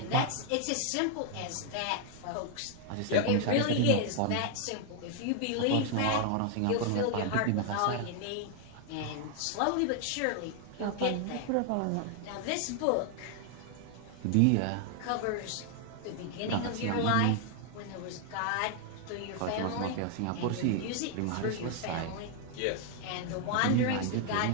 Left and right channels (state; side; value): different; both; correlation 0.00